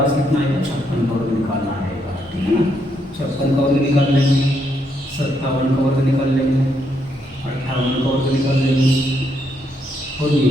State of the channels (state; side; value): normal; both; correlation 0.76